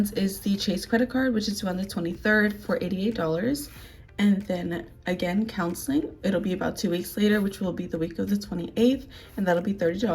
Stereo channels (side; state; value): both; identical; correlation 1.00